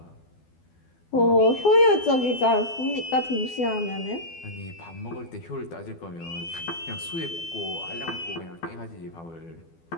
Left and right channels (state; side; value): late; right; 12 ms